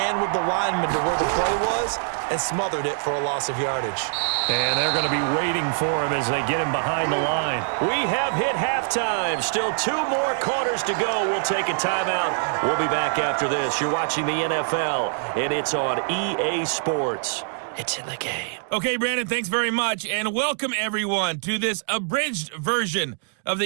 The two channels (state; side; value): silent; left; digital silence